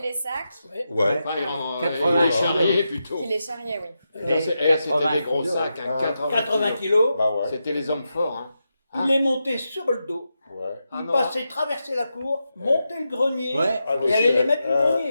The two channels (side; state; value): both; inverted; correlation -0.88